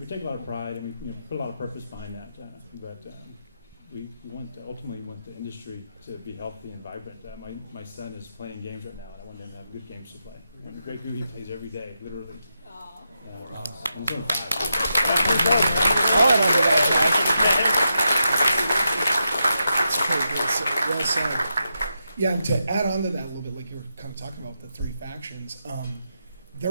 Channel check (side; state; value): both; inverted; correlation -0.86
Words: take a lot of pride and we put a lot of purpose behind that. But we ultimately want the industry to be healthy and vibrant. My son is playing games right now, and I want him to have good games to play. And Grey Goo, he plays every day, literally. Aw. I'll add on to that, Well said. Yeah, and to add on to that a little bit, like you were kind of talking about the three factions,